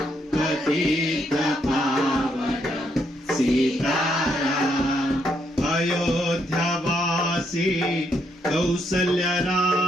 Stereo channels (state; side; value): normal; both; correlation 0.75